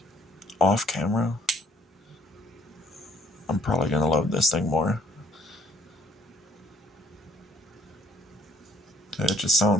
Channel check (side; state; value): both; normal; correlation 0.63